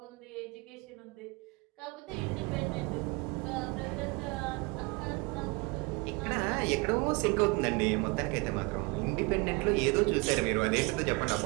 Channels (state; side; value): quieter; left; 27.2 dB